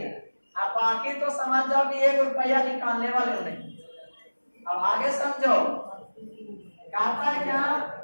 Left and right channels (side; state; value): both; inverted; correlation -1.00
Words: अब बाकी तो समझ जाओ कि 1 रुपया निकालने वाले नहीं। अब आगे समझो, कहता है क्या